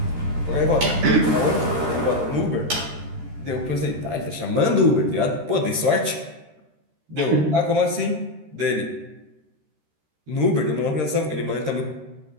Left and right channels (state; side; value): late; left; 13 ms